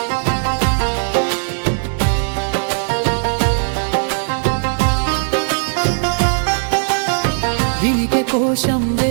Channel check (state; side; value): silent; left; digital silence